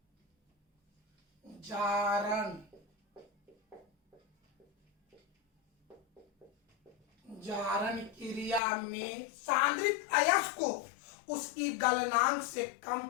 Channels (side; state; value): right; drops out; at 8.6 s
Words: जारण क्रिया में सांद्रित अयस्क को उसकी गलनांक से कम